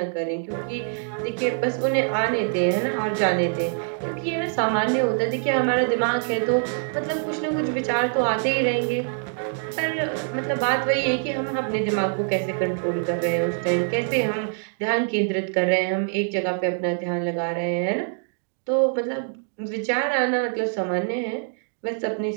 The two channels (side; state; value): left; silent; 62 dB below the other